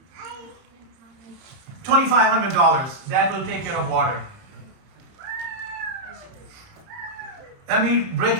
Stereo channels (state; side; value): late; left; 30 ms